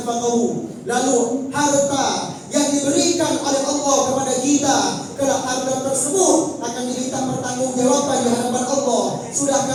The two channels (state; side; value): identical; both; correlation 1.00